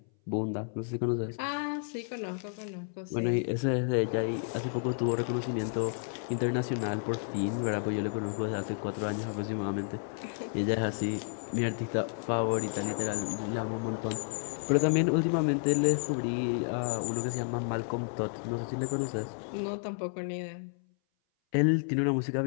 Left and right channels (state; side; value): silent; right; 57 dB below the other